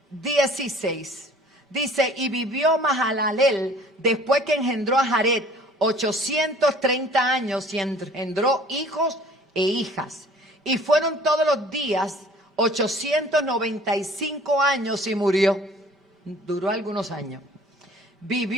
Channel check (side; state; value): both; normal; correlation 0.51